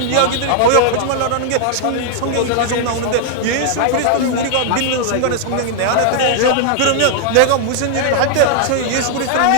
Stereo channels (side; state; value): both; different; correlation 0.00